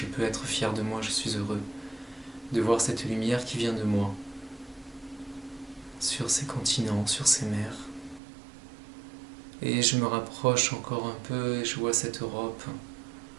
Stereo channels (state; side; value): drops out; left; at 8.2 s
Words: peux être fier de moi, je suis heureux de voir cette lumière qui vient de moi sur ces continents, sur ces mers. Et je me rapproche encore un peu et je vois cette Europe